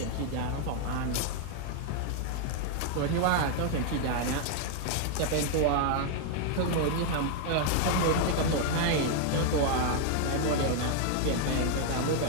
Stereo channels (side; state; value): both; different; correlation 0.00